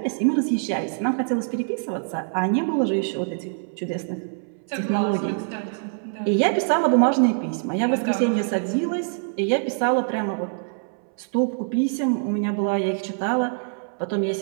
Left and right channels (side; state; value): left; silent; 62 dB below the other